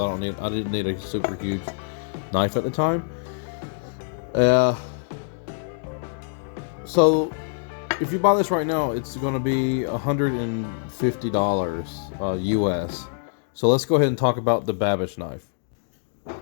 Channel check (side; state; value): right; silent; digital silence